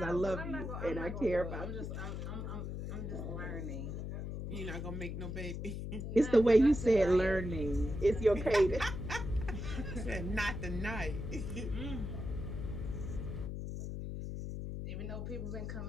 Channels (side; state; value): left; noise; hum, 5 dB below the sound